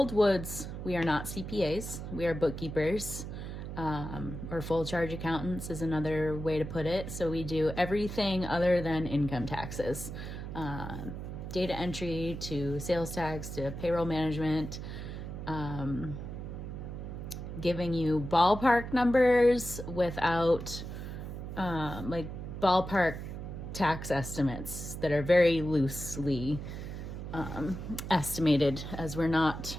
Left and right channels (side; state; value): right; noise; hum, 7 dB below the sound